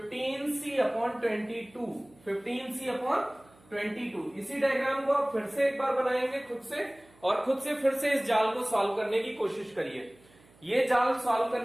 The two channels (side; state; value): right; noise; hum, 28 dB below the sound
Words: 15C/22। इसी डायग्राम को आप फिर से एक बार बनाएंगे खुद से, और खुद से फिर से इस जाल को सॉल्व करने की कोशिश करिए। ये जाल सॉल्व